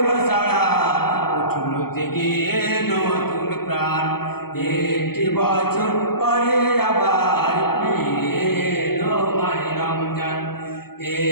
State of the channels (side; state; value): right; late; 0.95 ms